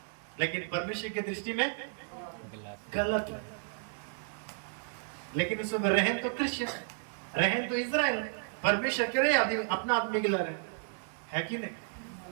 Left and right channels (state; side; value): silent; left; 56 dB below the other